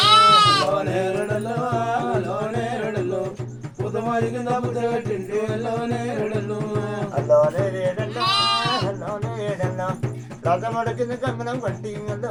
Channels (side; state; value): both; identical; correlation 1.00